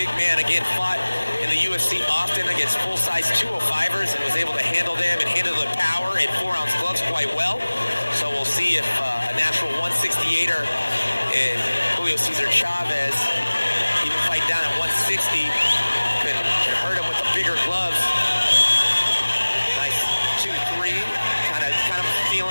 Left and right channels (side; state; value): both; inverted; correlation -1.00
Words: man, again, fought in the UFC often against full-size 205ers and was able to handle them and handle the power in 4-ounce gloves quite well. So we'll see if a natural 168er in Julio Cesar Chavez, even fight down at 160, can hurt him with the bigger gloves. Nice 2-3, kind of